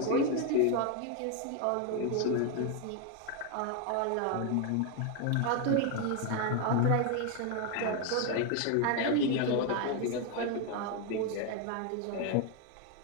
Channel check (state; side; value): different; both; correlation 0.01